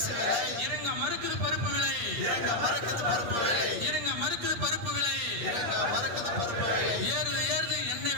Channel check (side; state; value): left; late; 8.5 ms